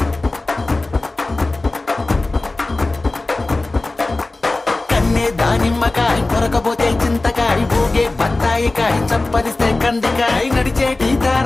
కన్నే దానిమ్మకాయ కొరకబోతే చింతకాయ ఊగే బత్తాయికాయ చప్పరిస్తే కందికాయ నడిచేటి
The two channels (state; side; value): quieter; right; 3.1 dB